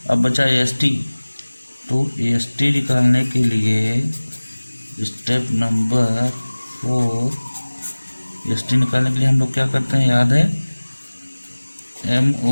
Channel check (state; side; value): inverted; both; correlation -1.00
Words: अब बचा AST, तो AST निकालने के लिए स्टेप नंबर 4, AST निकालने के लिए हम लोग क्या करते हैं, याद है,